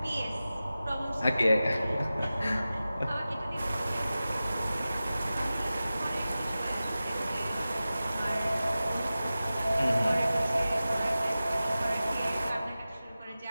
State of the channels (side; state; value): both; inverted; correlation -0.95